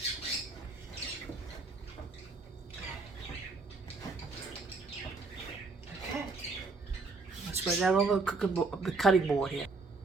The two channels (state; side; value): quieter; left; 3.8 dB